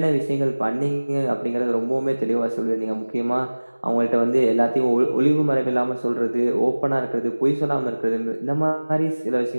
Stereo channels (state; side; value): inverted; both; correlation -1.00